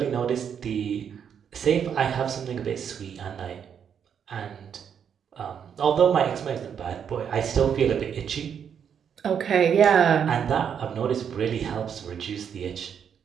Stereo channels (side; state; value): left; quieter; 7.9 dB